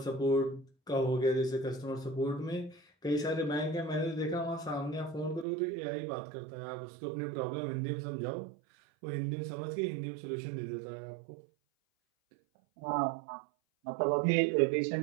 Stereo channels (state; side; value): drops out; left; at 5.5 s